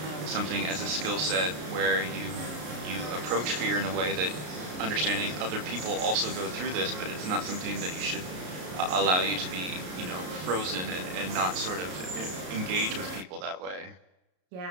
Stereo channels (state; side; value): late; left; 33 ms